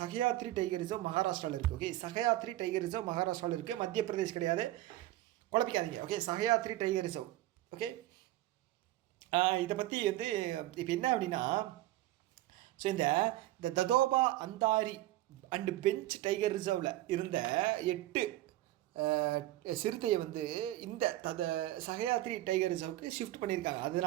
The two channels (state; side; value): quieter; left; 15.8 dB